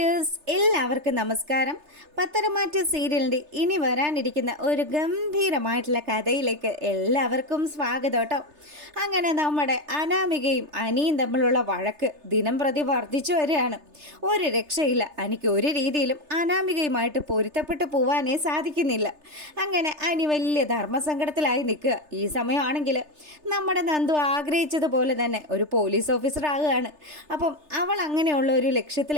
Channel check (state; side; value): late; left; 3.3 ms